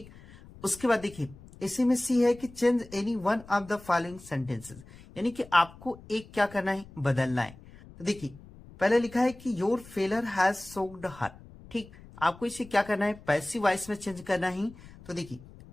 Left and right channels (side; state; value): left; noise; rumble, 20 dB below the sound